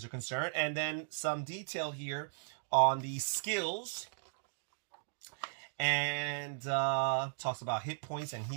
are concerned. And then some detail here on the skills. And talks about hit points and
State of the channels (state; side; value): silent; left; digital silence